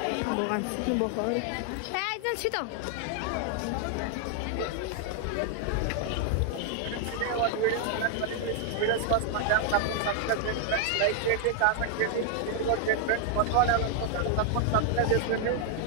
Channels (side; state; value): both; different; correlation 0.00